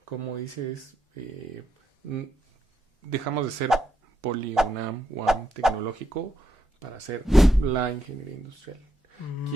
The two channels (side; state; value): both; normal; correlation 0.79